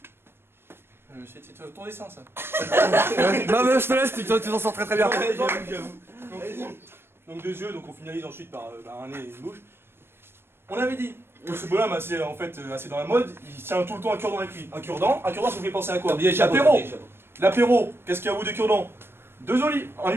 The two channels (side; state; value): left; late; 0.11 ms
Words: C'est ton dessin ça. Non, mais je te laisse, tu t'en sors très bien. J'avoue. Donc 2 yeux, donc on finalise ensuite par un nez et une bouche. On avait dit que ce bonhomme assez, en fait, assez dans la mode, il tient tout le temps un cure-dent avec lui. Un cure-dent, ça vous fait penser à quoi? L'apéro. L'apéro, qu'est-ce qu'il y a au bout des cure-dents? 2 olives, en